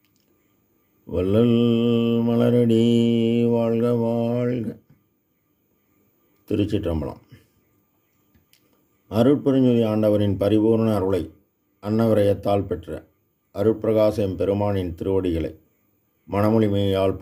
வள்ளல் மலரடி வாழ்க வாழ்க. திருச்சிற்றம்பலம். அருட்பெருஞ்சோதி ஆண்டவரின் பரிபூர்ண அருளை அன்னவரையத்தால் பெற்ற அருட்பிரகாச எம்பெருமானின் திருவடிகளை மனமொழிமையால்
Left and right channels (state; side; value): identical; both; correlation 1.00